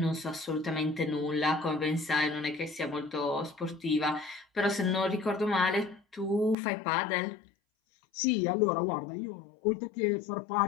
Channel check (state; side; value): drops out; right; at 6.6 s